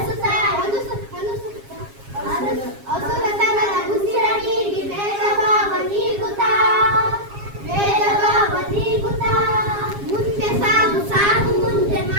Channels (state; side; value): late; left; 7.4 ms